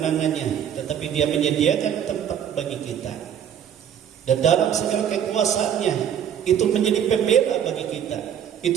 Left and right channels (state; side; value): quieter; left; 9.2 dB